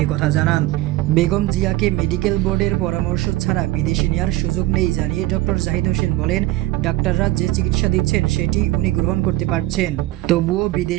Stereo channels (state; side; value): quieter; left; 17.1 dB